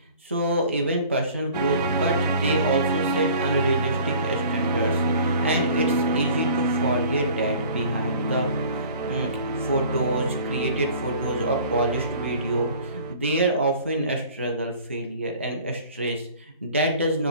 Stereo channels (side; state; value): both; inverted; correlation -0.48